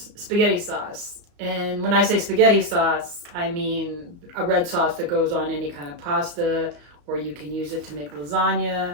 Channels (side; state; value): left; late; 34 ms